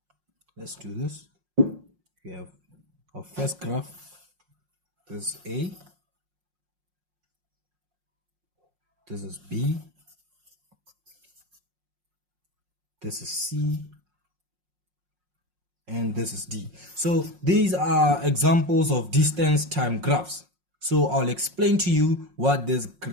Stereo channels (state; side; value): late; left; 5.6 ms